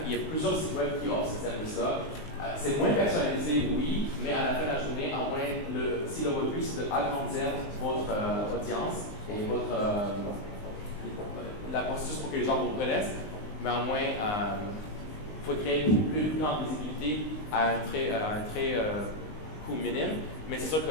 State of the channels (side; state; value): right; late; 19 ms